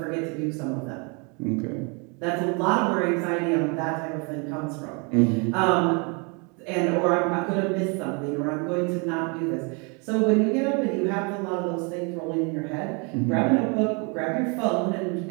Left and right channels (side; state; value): left; quieter; 33.2 dB